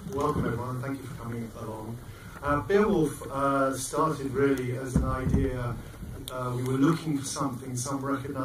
Welcome, everyone. Thank you for coming along. Beowulf started really as an idea. We were looking for something, some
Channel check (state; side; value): identical; both; correlation 1.00